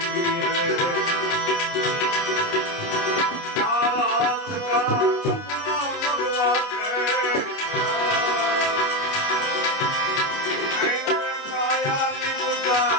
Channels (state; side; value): late; right; 29 ms